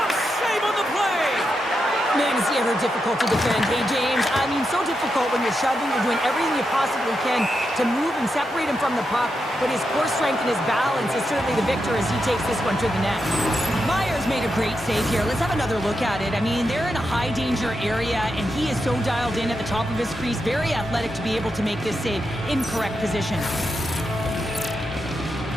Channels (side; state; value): both; normal; correlation 0.86